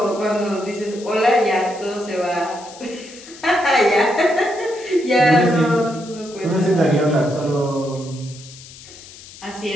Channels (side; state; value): left; noise; hiss, 18 dB below the sound